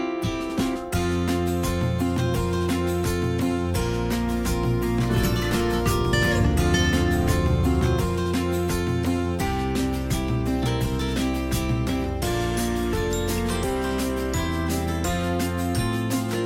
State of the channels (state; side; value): identical; both; correlation 1.00